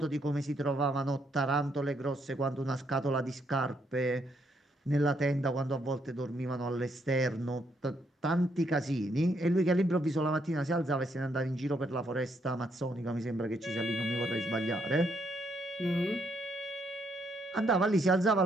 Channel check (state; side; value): normal; both; correlation 0.74